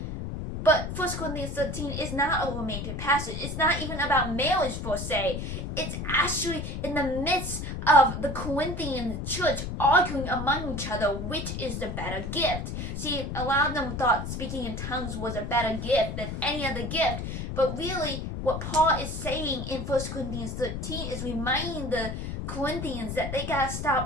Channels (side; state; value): left; noise; rumble, 5 dB below the sound